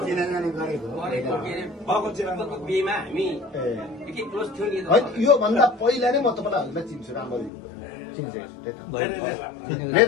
बिहेमा हामी एकै क्लोज थियो नि यो भन्दा पहिला नै म तपाईँलाई हजुरलाई चिन्छु राम्ररी मेरो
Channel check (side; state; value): right; drops out; at 7.5 s